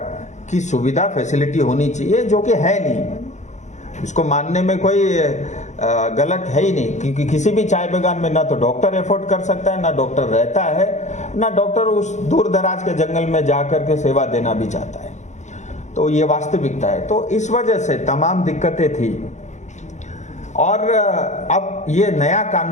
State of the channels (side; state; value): right; late; 0.34 ms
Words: की सुविधा फैसिलिटी होनी चाहिए, जो कि है नहीं। इसको मानने में कोई गलत है ही नहीं, क्योंकि किसी भी चाय बागान में ना तो डॉक्टर एफोर्ड कर सकता है, ना डॉक्टर रहता है, ना डॉक्टर उस दूर दराज के जंगल में जाकर के सेवा देना भी चाहता है। तो ये वास्तविकता है। तो इस वजह से तमाम दिक्कतें थी, और अब ये नया